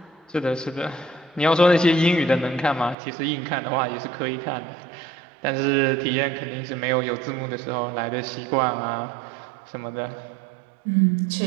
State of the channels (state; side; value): drops out; left; at 3.0 s